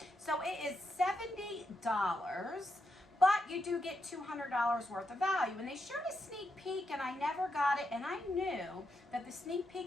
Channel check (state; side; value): normal; both; correlation 0.83